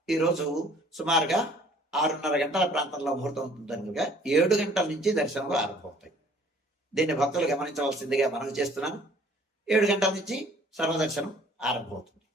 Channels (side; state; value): both; normal; correlation 0.55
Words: ఈరోజు సుమారుగా 6:30 గంటల ప్రాంతంలో ముహూర్తం ఉంటుందనుగా 7 గంటల నుంచి దర్శనాలు ఆరంభమవుతాయి. దీన్ని భక్తులు గమనించవలసిందిగా మనవి చేస్తున్నాను. 7 గంటల నుంచి సర్వదర్శనం ఆరంభమవుతుంది.